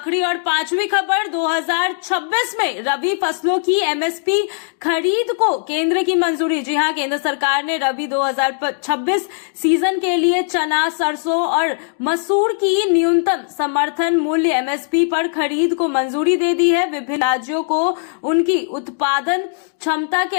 और 5वीं खबर, 2026 में रबी फसलों की एमएसपी खरीद को केंद्र की मंजूरी। जी हां, केंद्र सरकार ने रबी 2026 सीजन के लिए चना, सरसों और मसूर की न्यूनतम समर्थन मूल्य एमएसपी पर खरीद को मंजूरी दे दी है। विभिन्न राज्यों को उनकी उत्पादन क्षमता के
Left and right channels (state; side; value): silent; right; digital silence